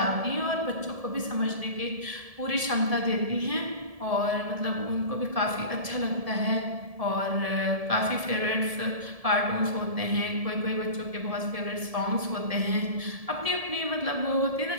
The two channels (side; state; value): left; late; 1.7 ms